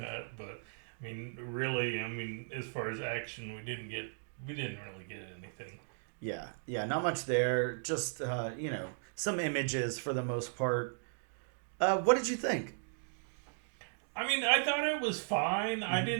But really, as far as action, we didn't really get anything. Yeah, not much there. Just some images for the most part. What did you think? I thought it was fine. I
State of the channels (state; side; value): silent; left; digital silence